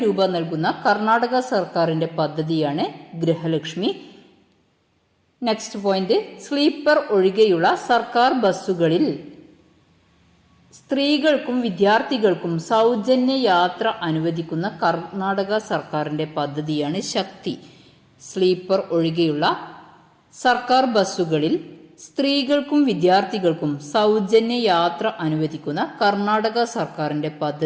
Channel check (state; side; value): identical; both; correlation 1.00